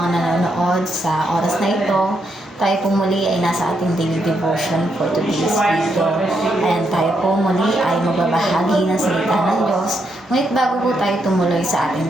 nanonood sa oras na ito. Tayo po muli ay nasa ating daily devotion for today's video. And tayo po muli ay magbabahagi ng salita ng Diyos. Ngunit bago po tayo tumuloy sa ating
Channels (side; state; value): both; normal; correlation 0.79